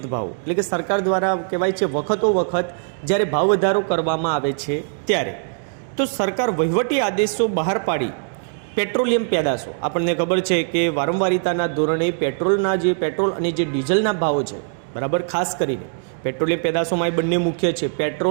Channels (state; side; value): silent; left; digital silence